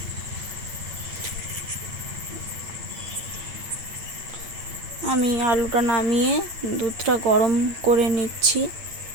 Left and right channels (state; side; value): late; left; 8.8 ms